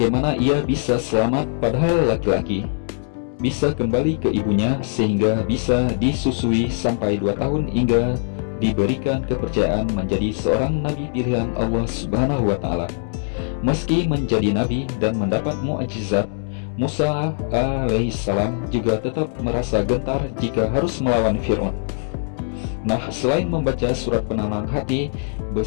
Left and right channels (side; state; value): right; silent; digital silence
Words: ia bisa selamat padahal laki-laki, bisa kembali ke ibunya sehingga bisa disusui sampai 2 tahun hingga diberikan kepercayaan menjadi seorang nabi pilihan Allah Subhanahu wa Ta'ala. Meski menjadi nabi dan mendapat mukjizat, Musa alaihissalam juga tetap merasa gentar jika harus melawan Fir'aun. Nah, selain membaca surat penenang hati